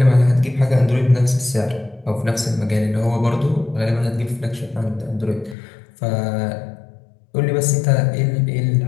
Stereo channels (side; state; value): right; drops out; at 5.6 s